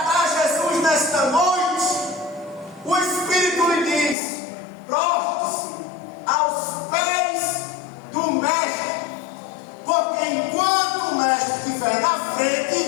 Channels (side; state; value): right; drops out; at 4.2 s